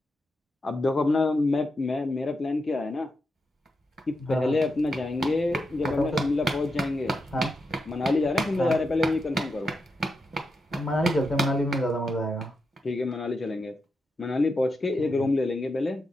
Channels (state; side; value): normal; both; correlation 0.86